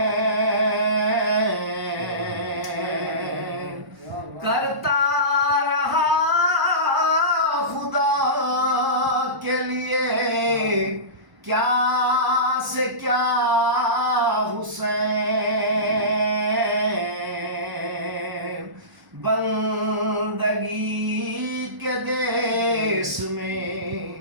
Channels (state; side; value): late; left; 1.1 ms